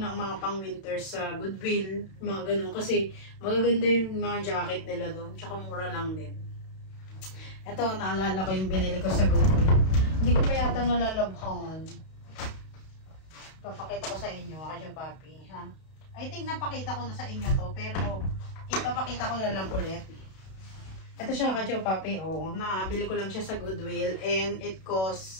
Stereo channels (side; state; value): right; late; 32 ms